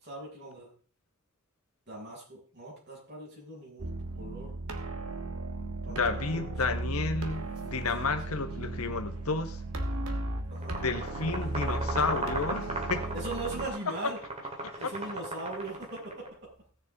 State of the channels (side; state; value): both; normal; correlation 0.29